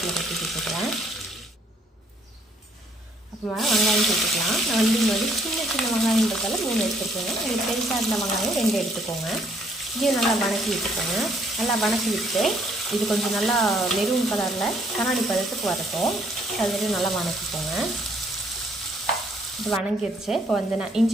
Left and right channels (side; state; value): both; normal; correlation 0.66